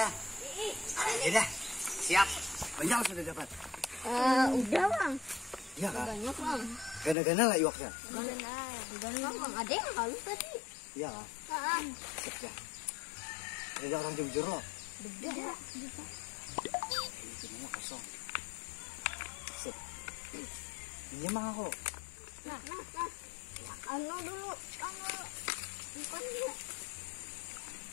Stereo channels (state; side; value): drops out; right; at 7.2 s